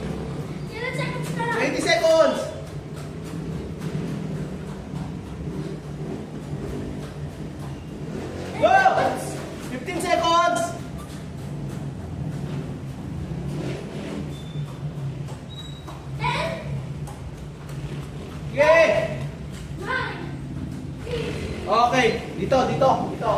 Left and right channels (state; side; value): identical; both; correlation 1.00